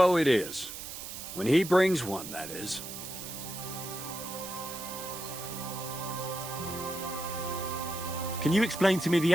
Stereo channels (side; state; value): right; noise; hiss, 9 dB below the sound